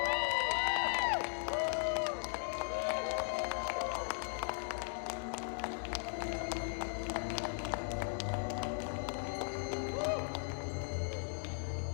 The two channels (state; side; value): silent; right; digital silence